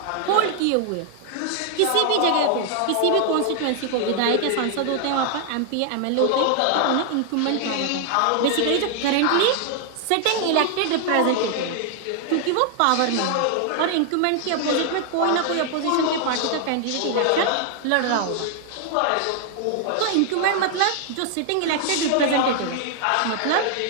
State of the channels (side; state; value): both; different; correlation 0.00